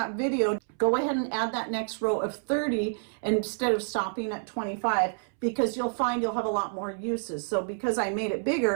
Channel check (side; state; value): left; silent; 59 dB below the other